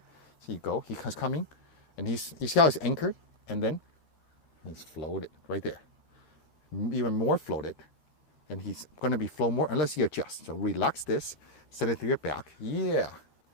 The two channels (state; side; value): late; right; 13 ms